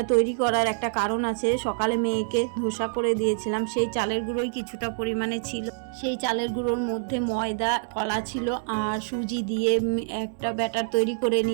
তৈরি করার একটা কারণ আছে, সকালে মেয়েকে ধোসা করে দিয়েছিলাম, সেই চালের গুঁড়োই কিছুটা পরিমাণে ছিল। সেই চালের গুঁড়োর মধ্যে ময়দা, কলা ছিল আর সুজি দিয়ে একটা ব্যাটার তৈরি করে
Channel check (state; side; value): silent; left; digital silence